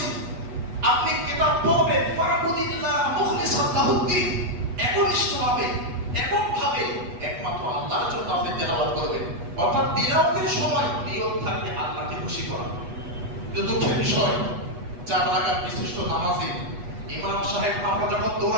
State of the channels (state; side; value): late; left; 8.2 ms